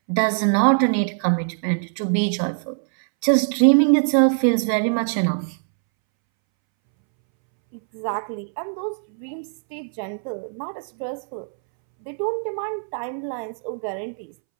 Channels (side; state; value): left; silent; 64 dB below the other